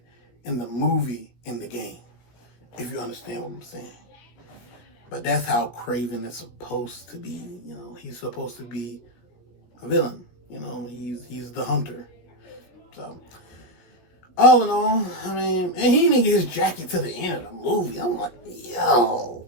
in the movie, in the game. If you understand what I'm saying. But that's how Kraven is supposed to be. You know, he's supposed to be a villain. You know, he's the hunter. So, all in all, I mean, and he didn't get his jacket to the end of the movie. I'm like, yo,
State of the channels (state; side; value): late; right; 16 ms